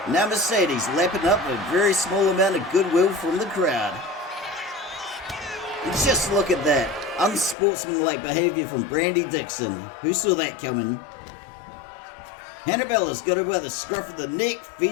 Now Mercedes lapping up a very small amount of goodwill from the crowd. And just look at that. Unsportsmanlike behavior from Brandy Dixon. Who saw that coming? Hannabella's got her by the scruff of the neck,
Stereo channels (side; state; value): right; drops out; at 7.6 s